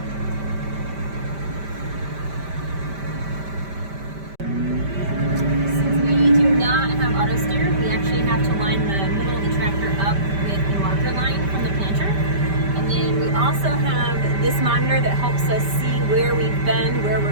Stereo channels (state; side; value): late; left; 5.1 ms